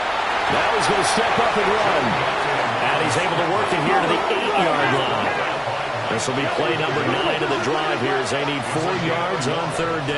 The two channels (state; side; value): identical; both; correlation 1.00